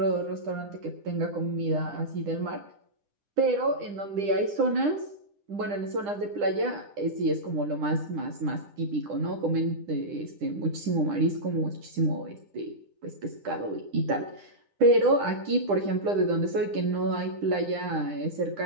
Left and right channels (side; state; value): left; late; 9.9 ms